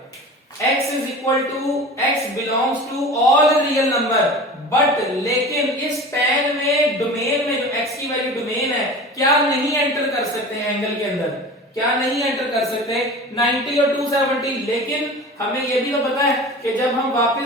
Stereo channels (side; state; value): both; normal; correlation 0.36